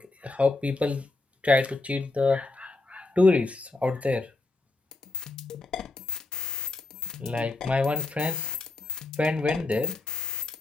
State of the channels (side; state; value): right; quieter; 3.1 dB